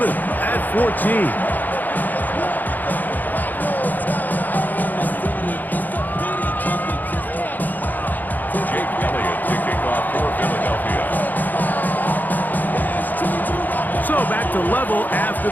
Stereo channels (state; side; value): late; right; 0.085 ms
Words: at 14. So back to level after